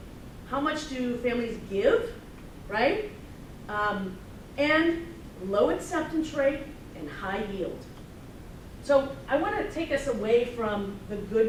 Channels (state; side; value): identical; both; correlation 1.00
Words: how much do families give, right? And low acceptance rate and high yield. So I want to take us away from the